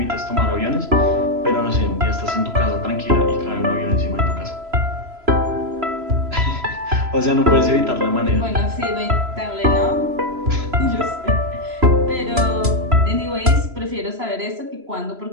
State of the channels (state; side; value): late; left; 3.0 ms